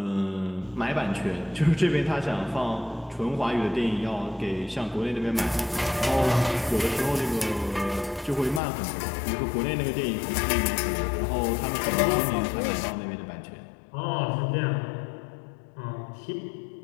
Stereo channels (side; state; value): right; drops out; at 8.6 s